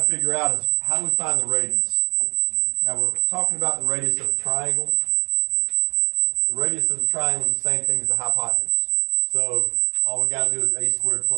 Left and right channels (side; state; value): left; silent; 58 dB below the other